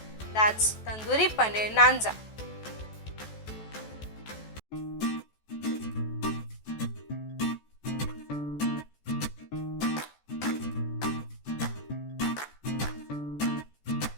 That's Tandoori Paneer Naanza.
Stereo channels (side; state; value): right; late; 14 ms